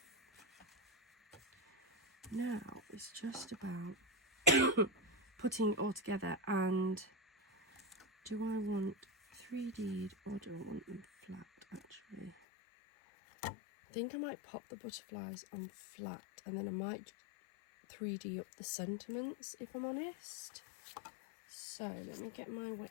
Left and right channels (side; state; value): right; drops out; at 12.4 s